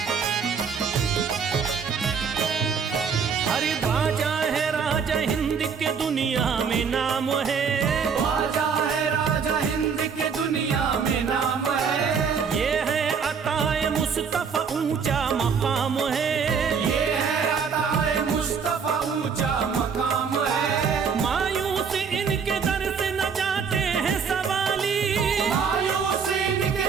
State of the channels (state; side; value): quieter; left; 6.2 dB